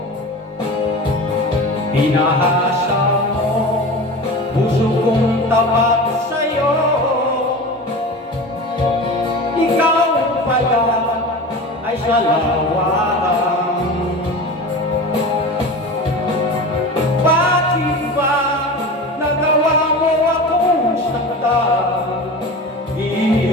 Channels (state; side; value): normal; both; correlation 0.32